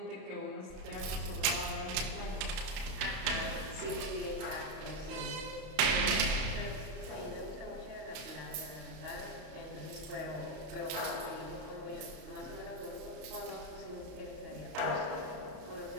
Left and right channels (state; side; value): late; left; 32 ms